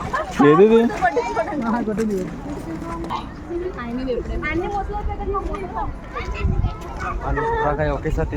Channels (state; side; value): identical; both; correlation 1.00